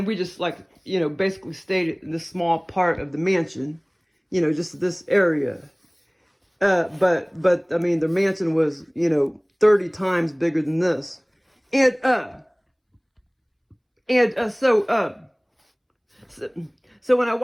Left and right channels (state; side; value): identical; both; correlation 1.00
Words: we just like, you know, basically stayed in this small part of the mansion, you know, just this area. But I mean, their mansion was, you know, 30 times bigger than this. And so when I